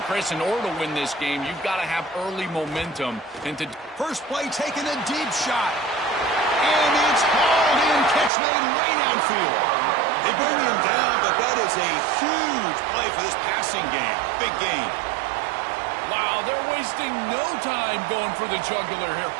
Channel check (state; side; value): drops out; left; at 8.3 s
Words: Chris, in order to win this game, you've got to have early momentum. First play, taking a deep shot. And it's hauled in, catch made way downfield. They bring him down, but that is a huge play for this passing game. Big game. Wow, they're wasting no time going for the jugular here.